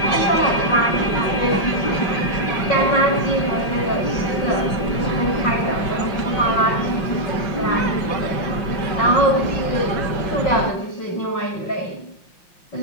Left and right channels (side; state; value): right; late; 5.6 ms